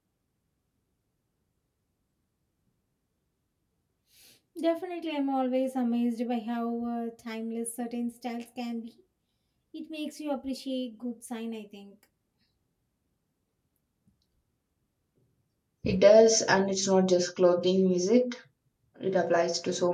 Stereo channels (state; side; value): identical; both; correlation 1.00